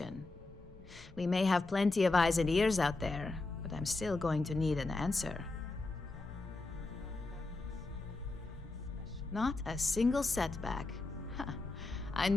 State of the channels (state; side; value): quieter; right; 3.3 dB